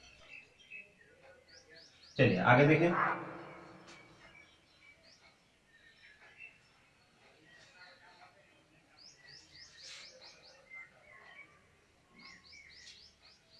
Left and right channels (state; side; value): identical; both; correlation 1.00